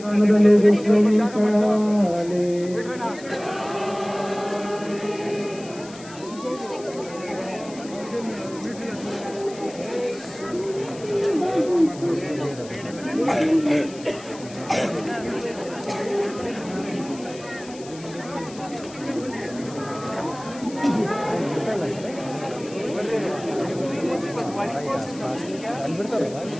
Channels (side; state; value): left; noise; hiss, 18 dB below the sound